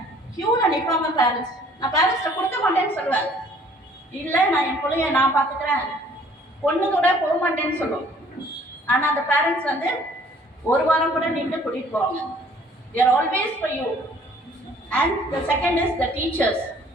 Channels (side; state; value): both; normal; correlation 0.57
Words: கியூல நிற்பாங்க பேரண்ட்ஸ். நான் பேரண்ட்ஸ்ட கொடுக்க மாட்டேன்னு சொல்லுவேன். இல்ல நான் என் பிள்ளைய நான் பாத்துக்கிறேன், பொண்ணு கூட போக மாட்டேன்னு சொல்லுவோம். ஆனா அந்த பேரண்ட்ஸ் வந்து ஒரு வாரம் கூட நின்று கூட்டிட்டு போவாங்க. they are always for you. And the second is the teachers.